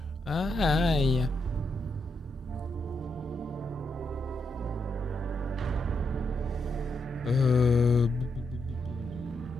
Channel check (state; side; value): normal; both; correlation 0.81